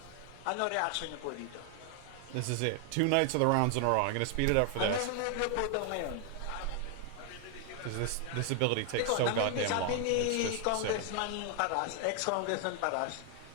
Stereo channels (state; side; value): different; both; correlation 0.00